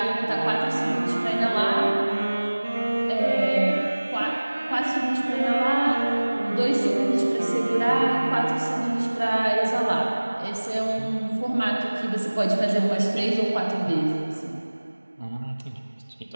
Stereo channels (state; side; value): inverted; both; correlation -1.00